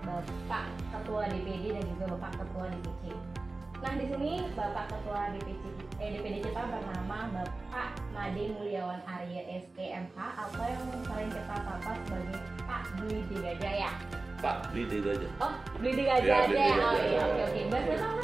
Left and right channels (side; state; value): left; quieter; 3.3 dB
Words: Bapak Ketua DPD dan juga Bapak Ketua DPJ. Nah, di sini Bapak Ketua DPD kita bernama Bapak Made Mulyawan Arya STMH atau yang sering kita sapa sebagai Pak Blidi Gajah ya. Pak Blidi Gajah. Oh, Blidi Gajah ya, aja. Blidi Oh Gajah. iya, oke. Bahasa